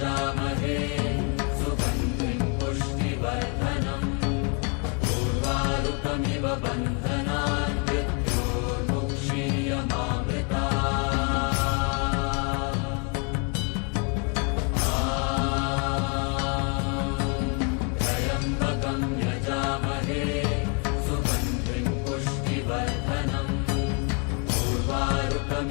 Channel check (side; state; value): right; quieter; 35.9 dB